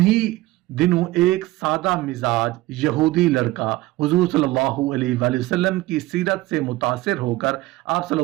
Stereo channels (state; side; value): quieter; left; 18.6 dB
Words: دنوں ایک سادہ مزاج یہودی لڑکا حضور صلی اللہ علیہ وآلہ وسلم کی سیرت سے متاثر ہو کر آپ صلی